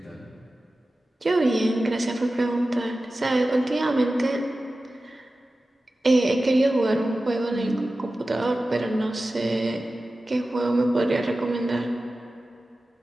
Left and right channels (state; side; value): normal; both; correlation 0.95